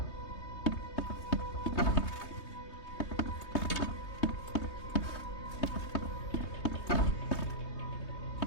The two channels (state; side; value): late; right; 3.2 ms